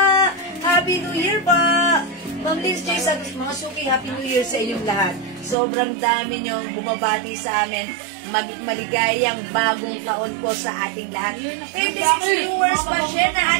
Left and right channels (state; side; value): drops out; left; at 5.6 s